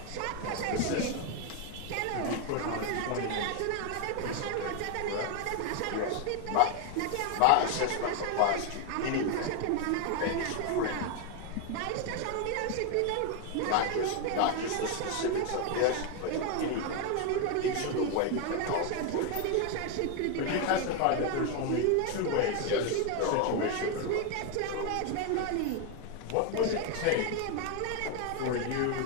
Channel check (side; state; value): both; different; correlation 0.01